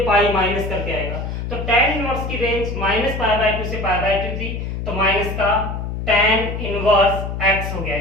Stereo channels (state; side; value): noise; left; hum, 5 dB below the sound